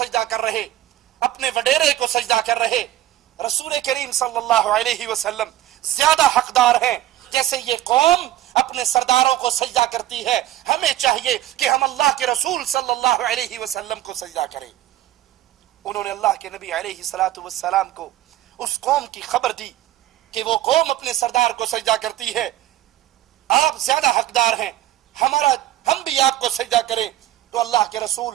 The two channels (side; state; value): left; quieter; 13.9 dB